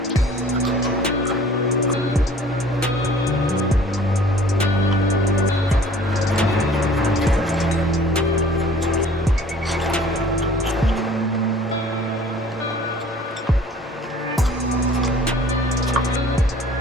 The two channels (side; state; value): both; normal; correlation 0.50